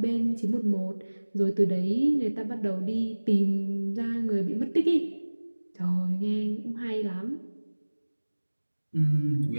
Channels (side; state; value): both; inverted; correlation -1.00